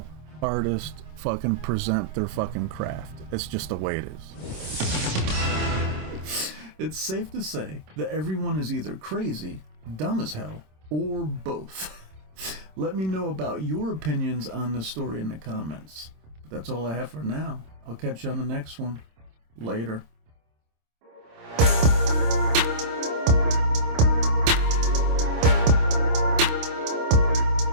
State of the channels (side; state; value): left; late; 26 ms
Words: artists fucking present their fucking craft. It's just the way it is. It's safe to say that everyone is either crazy, dumb as hell, or both. Let me know about your opinions on the story in the comments. But that's all I have for now. I'll catch you on the next one. Later.